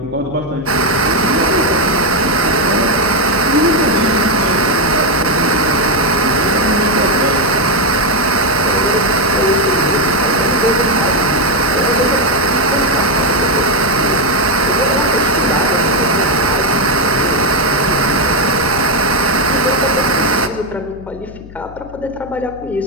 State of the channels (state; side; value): noise; left; hum, 18 dB below the sound